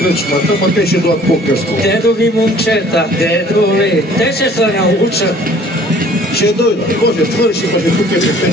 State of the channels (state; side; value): normal; both; correlation 0.53